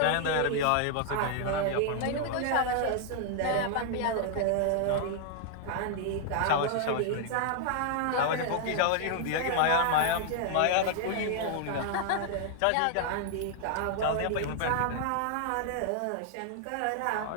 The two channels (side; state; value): both; different; correlation 0.00